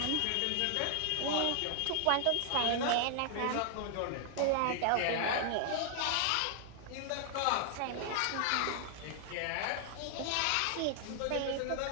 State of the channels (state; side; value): different; both; correlation 0.00